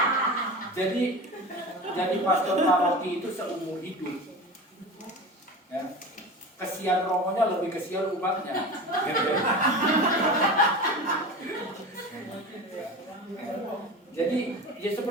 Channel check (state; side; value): normal; both; correlation 0.30